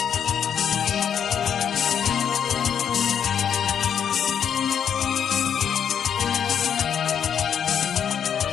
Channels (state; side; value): quieter; right; 8.3 dB